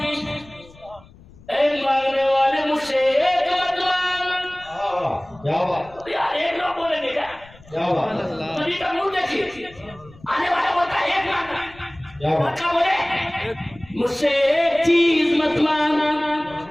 اے مانگنے والے مجھ سے ایک مت مانگ، کیا بات یار ایک لوگ بولیں گے کیا بات نبی کا منہ دیکھیے، آنے والا بولتا ہے ایک مانگنا، کیا بات بچہ بولے مجھ سے ایک چیز مت مانگ،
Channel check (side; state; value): left; noise; rumble, 24 dB below the sound